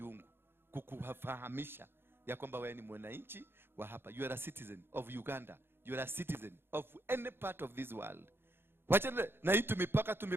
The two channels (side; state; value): left; late; 0.11 ms